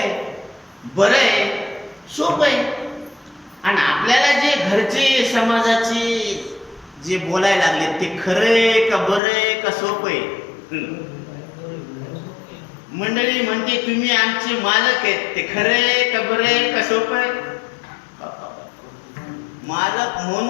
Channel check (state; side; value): drops out; right; at 9.2 s